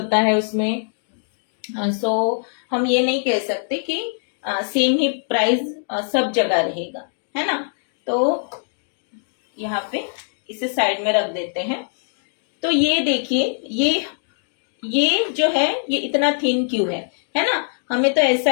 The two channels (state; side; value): silent; right; 64 dB below the other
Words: है उसमें। सो हम ये नहीं कह सकते कि सेम ही प्राइस सब जगह रहेगा, है ना। तो यहाँ पे इसे साइड में रख देते हैं। तो ये देखिए, ये जो है ये इतना थिन क्यों है ना। हमें तो ऐसा